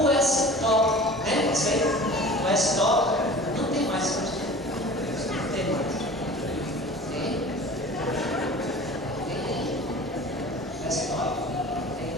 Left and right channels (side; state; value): both; normal; correlation 0.40